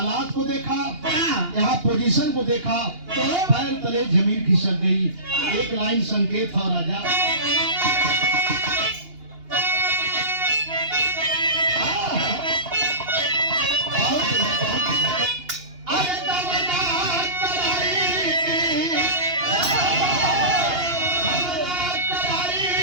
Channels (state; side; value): late; left; 2.8 ms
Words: को देखा, यहाँ पोजीशन को देखा तो पैर तले जमीन खिसक गई। एक लाइन संकेत था राजा,